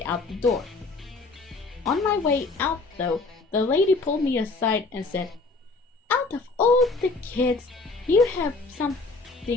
out the door. On my way out though, the lady pulled me aside and said, "Out of all the kids, you have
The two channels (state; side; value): quieter; right; 3.7 dB